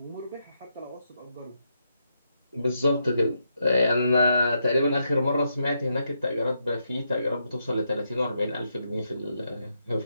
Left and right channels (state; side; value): inverted; both; correlation -0.81